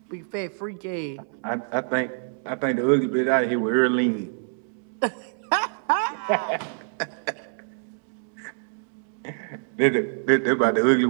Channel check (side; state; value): left; silent; digital silence